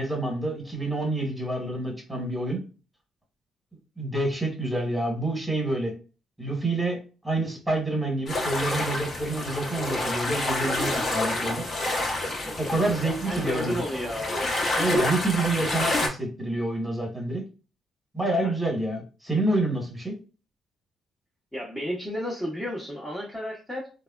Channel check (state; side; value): normal; both; correlation 0.74